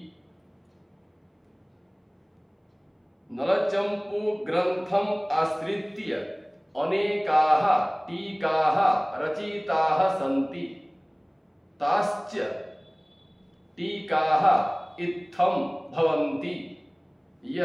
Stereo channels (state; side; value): identical; both; correlation 1.00